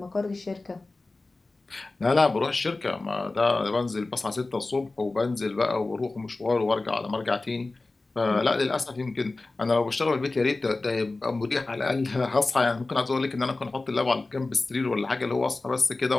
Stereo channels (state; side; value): quieter; right; 3.3 dB